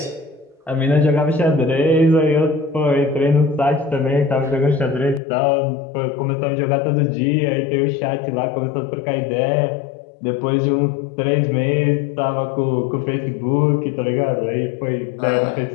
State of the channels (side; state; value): right; drops out; at 5.2 s